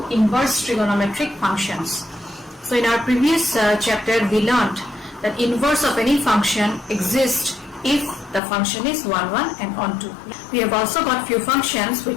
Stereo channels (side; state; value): right; drops out; at 8.4 s